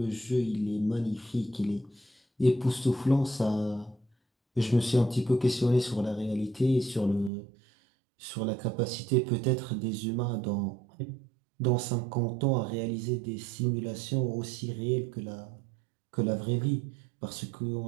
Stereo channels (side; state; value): left; drops out; at 7.3 s